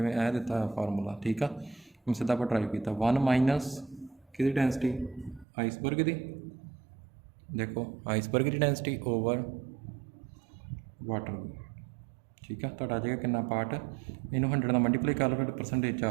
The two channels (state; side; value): drops out; left; at 5.5 s